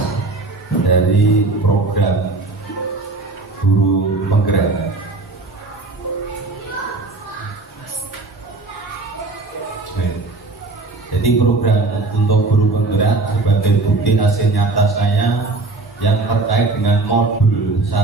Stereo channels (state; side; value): quieter; left; 3.4 dB